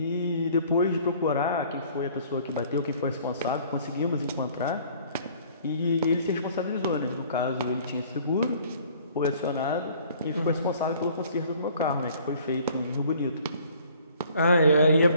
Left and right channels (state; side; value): inverted; both; correlation -0.55